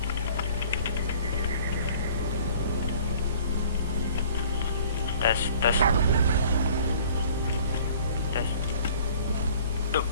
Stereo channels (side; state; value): both; inverted; correlation -0.51